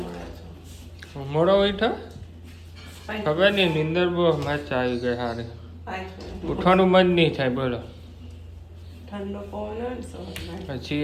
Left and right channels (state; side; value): identical; both; correlation 1.00